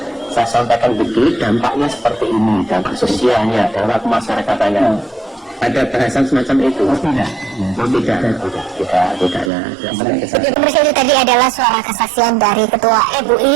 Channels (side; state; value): left; drops out; at 9.5 s